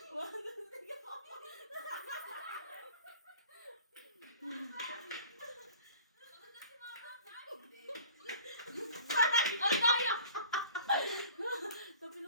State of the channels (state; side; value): inverted; both; correlation -0.47